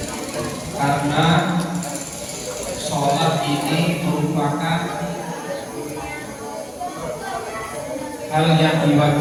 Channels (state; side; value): identical; both; correlation 1.00